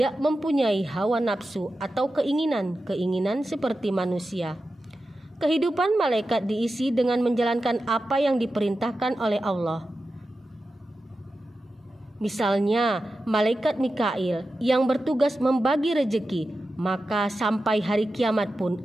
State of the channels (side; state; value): both; normal; correlation 0.92